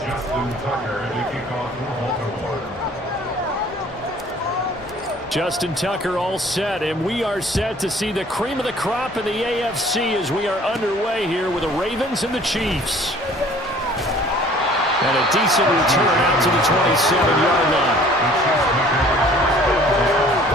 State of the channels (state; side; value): normal; both; correlation 0.53